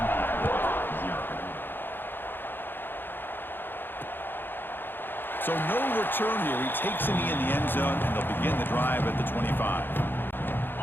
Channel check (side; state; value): right; late; 0.098 ms